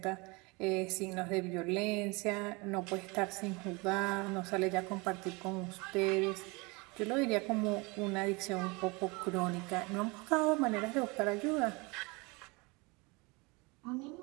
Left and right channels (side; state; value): left; quieter; 26.8 dB